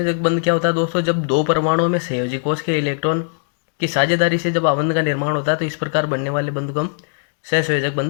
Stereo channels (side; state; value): right; silent; digital silence